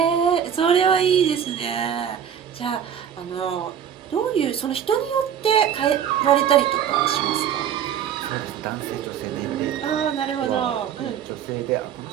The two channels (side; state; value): left; quieter; 8.9 dB